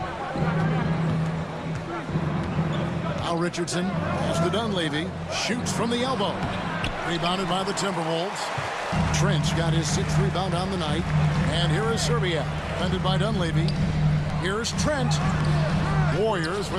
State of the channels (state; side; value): identical; both; correlation 1.00